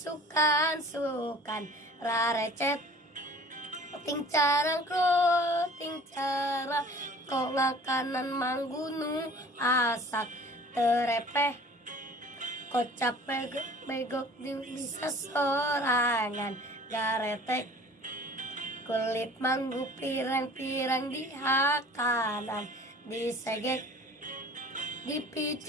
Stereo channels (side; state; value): both; normal; correlation 0.47